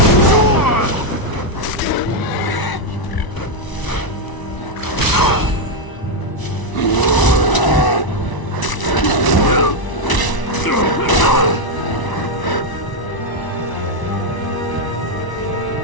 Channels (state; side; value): late; right; 1.0 ms